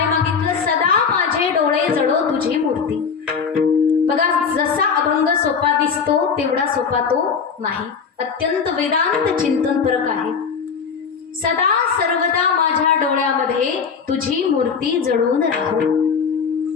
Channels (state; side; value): quieter; right; 6.0 dB